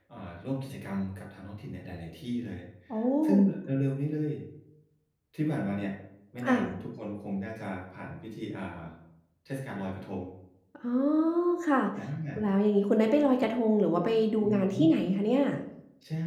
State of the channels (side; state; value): both; identical; correlation 1.00